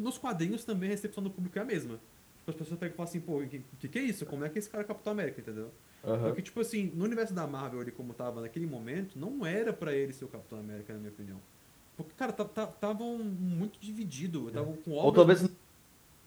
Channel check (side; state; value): both; identical; correlation 1.00